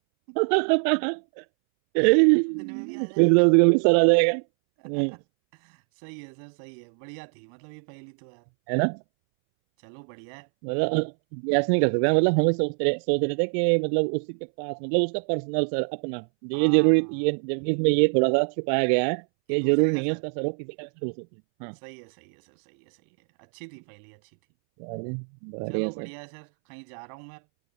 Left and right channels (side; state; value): left; silent; 63 dB below the other